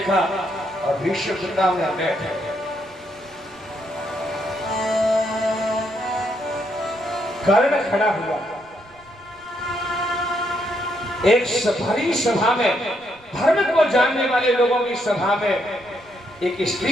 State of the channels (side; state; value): right; noise; rumble, 28 dB below the sound